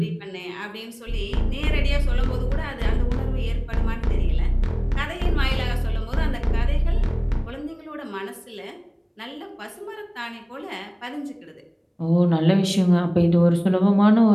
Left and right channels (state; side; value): identical; both; correlation 1.00